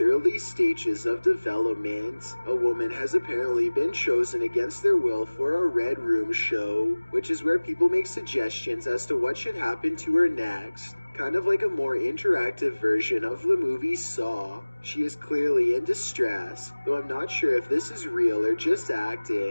early stages of development. A woman has apparently been chosen against their will for a Red Room show, which is where people make suggestions as to what should happen to her next. Kind of like a more interactive version of the movie Saw. She is clearly in distress, though I'm not sure if this is real or just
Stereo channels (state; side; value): inverted; both; correlation -1.00